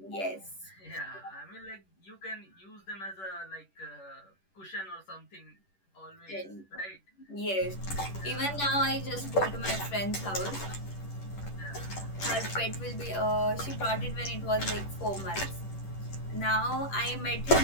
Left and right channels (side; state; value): right; late; 10 ms